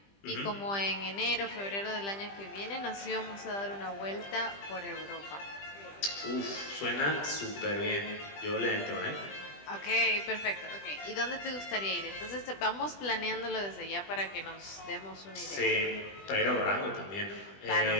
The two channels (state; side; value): late; right; 20 ms